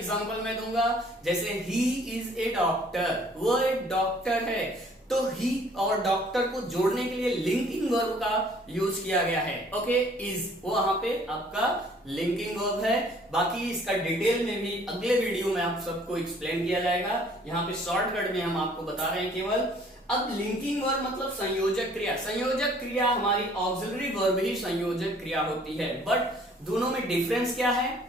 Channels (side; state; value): both; normal; correlation 0.57